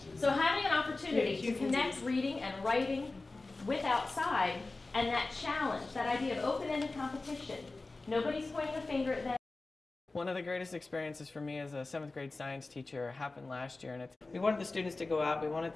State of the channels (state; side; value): quieter; right; 3.3 dB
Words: So having an opportunity to connect reading and writing with outside, and that challenge, that idea of open-ended competition. Nobody's pointing a finger at them. One of the greatest experiences for me as a 7th grade science teacher happened last year, and we wanted the students to go out, we wanted